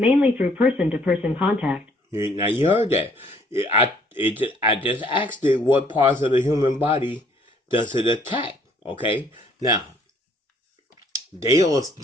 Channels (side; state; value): both; normal; correlation 0.62